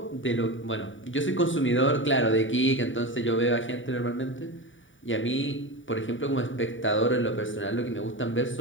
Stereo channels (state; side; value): late; right; 0.56 ms